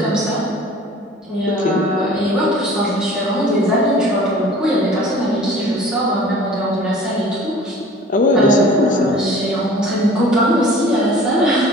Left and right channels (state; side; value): normal; both; correlation 0.46